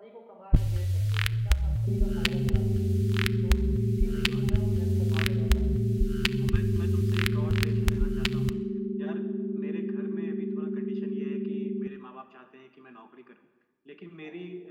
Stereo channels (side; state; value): both; identical; correlation 1.00